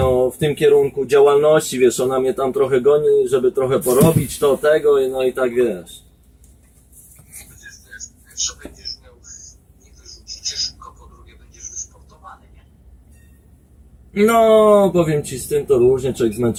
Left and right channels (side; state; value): both; identical; correlation 1.00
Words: w tym kierunku działalności, wiesz, ona mnie tam trochę goni, żeby trochę porobić to, tego, no i tak, wiesz. Pierwsze będziesz miał, nie wyrzucicie szybko, po drugie będziesz wysportowany, nie? No, powiem ci, z tym to różnie, człowiek